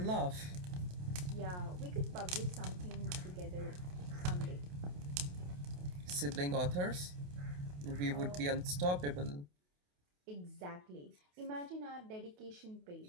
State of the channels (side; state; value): left; late; 28 ms